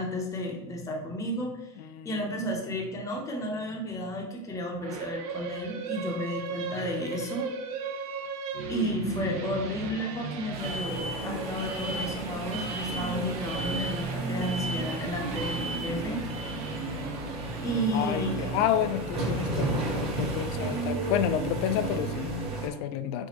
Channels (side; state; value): both; normal; correlation 0.19